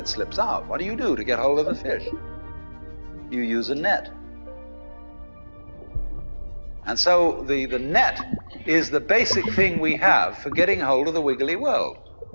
slips out. What do you do to get hold of the fish? You use a net. And so the net is the basic thing we have for getting hold of the wiggly world.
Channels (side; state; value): both; inverted; correlation -1.00